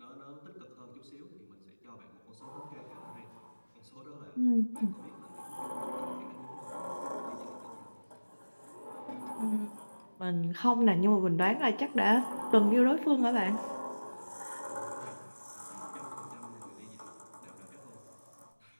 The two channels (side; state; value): both; inverted; correlation -1.00